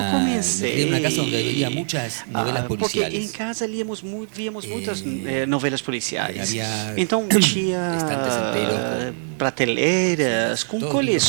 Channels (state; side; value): silent; left; digital silence